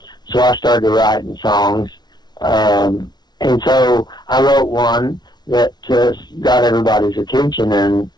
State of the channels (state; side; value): late; right; 0.20 ms